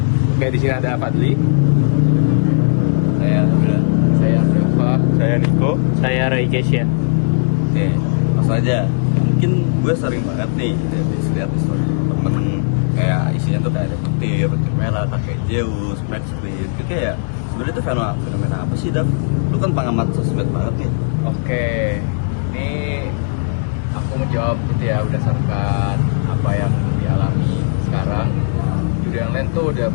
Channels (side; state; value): right; silent; digital silence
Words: Kayak di sini ada Fadli, Saya Dafa, saya Niko, Saya Roy Kesya. Oke, langsung aja. Mungkin gue sering banget nih lihat story teman-teman kayak isinya tuh kayak ada petir merah, kakek Zeus, Max Queen. Itu kayak sebenarnya itu fenomena apa sih, Dap? Lu kan pengamat sosmed banget nih. Oke, ini aku menjawab gitu ya berdasarkan apa yang dialami sekarang. Judi online tuh udah